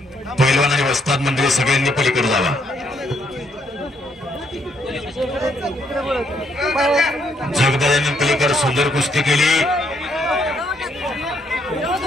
पैलवान आणि वस्ताद मंडळी सगळ्यांनी पलीकडे जावा. जगदादांनी पलीकडे सुंदर कुस्ती केली.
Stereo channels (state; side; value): normal; both; correlation 0.72